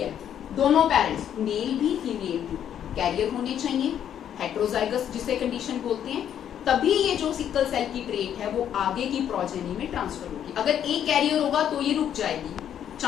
दोनों पेरेंट्स, मेल भी फीमेल भी कैरियर होने चाहिए, हेटेरोजाइगस जिसे कंडीशन बोलते हैं, तभी ये जो सिकल सेल की ट्रेट है वो आगे की प्रोजेनी में ट्रांसफर होगी। अगर एक कैरियर होगा तो ये रुक जाएगी,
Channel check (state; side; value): quieter; right; 9.7 dB